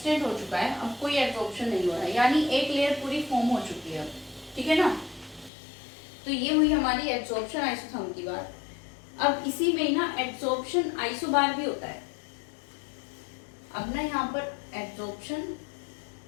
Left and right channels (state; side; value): drops out; right; at 5.5 s